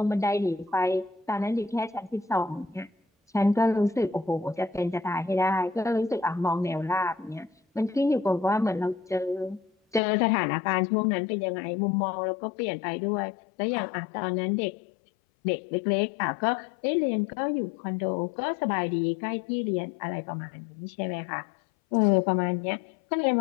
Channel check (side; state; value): right; drops out; at 10.0 s